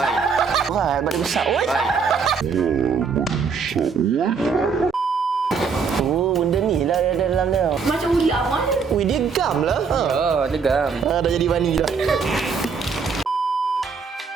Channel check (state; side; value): quieter; left; 5.6 dB